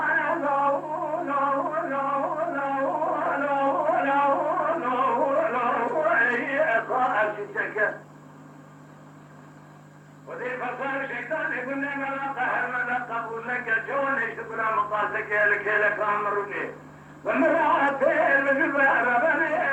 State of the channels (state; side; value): identical; both; correlation 1.00